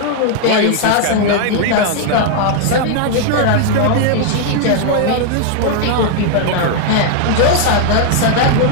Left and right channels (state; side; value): different; both; correlation 0.00